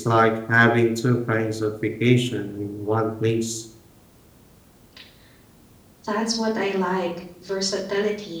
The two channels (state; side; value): identical; both; correlation 1.00